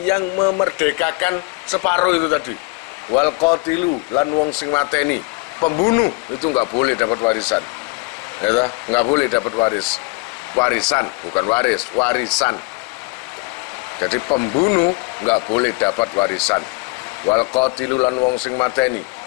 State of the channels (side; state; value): right; quieter; 28.5 dB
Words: yang memerdekakan separuh itu tadi. Wal qatilu lan wong sing mateni, pembunuh itu nggak boleh dapat warisan. Ya, nggak boleh dapat warisan, bukan waris, warisan. Jadi pembunuh nggak boleh dapat warisan. Wal qatilu lan wong sing mateni,